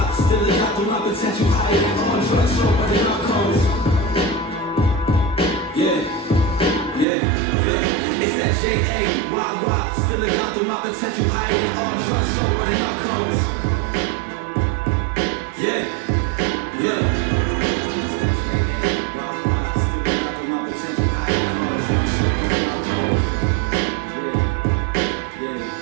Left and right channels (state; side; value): drops out; left; at 7.1 s